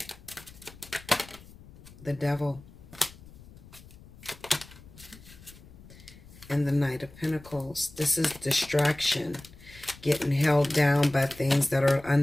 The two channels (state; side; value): noise; left; rumble, 20 dB below the sound